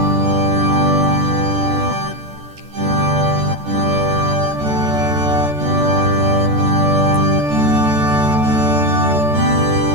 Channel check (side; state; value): left; late; 14 ms